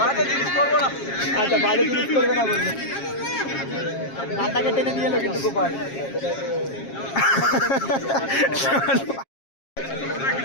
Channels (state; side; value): late; right; 7.4 ms